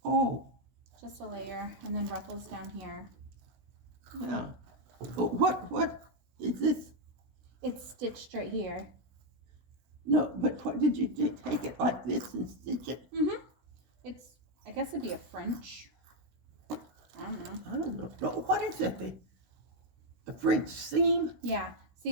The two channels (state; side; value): late; left; 16 ms